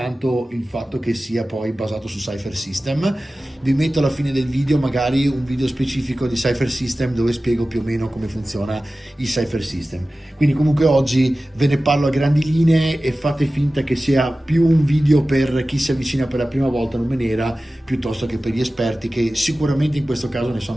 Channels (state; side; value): normal; both; correlation 0.96